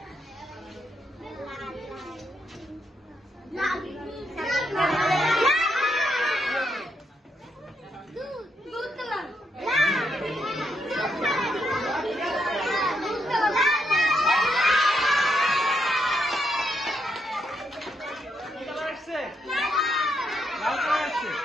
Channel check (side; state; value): both; normal; correlation 0.79